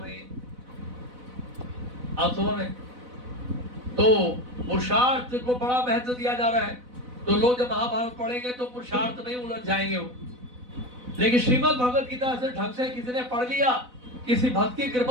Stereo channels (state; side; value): late; left; 4.0 ms